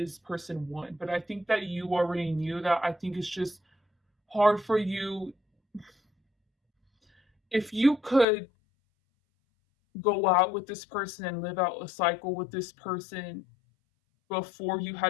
person one. But I think that you already knew that. I think it's just hard for you. If you could go out with this person and live out a cycle with this person before you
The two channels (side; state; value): right; drops out; at 8.2 s